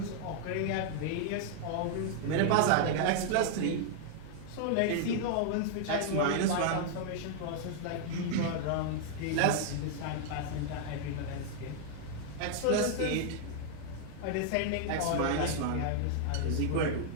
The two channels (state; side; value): different; both; correlation 0.00